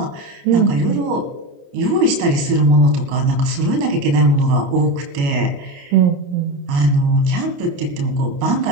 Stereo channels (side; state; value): left; late; 29 ms